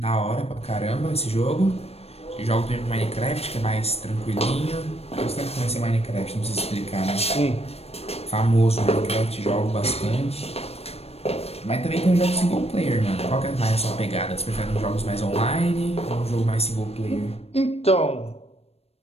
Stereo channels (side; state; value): right; late; 0.29 ms